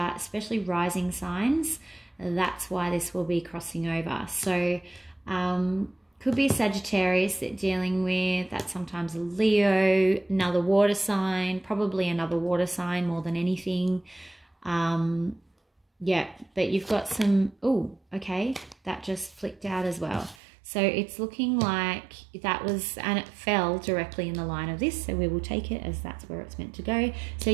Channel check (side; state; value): left; drops out; at 20.4 s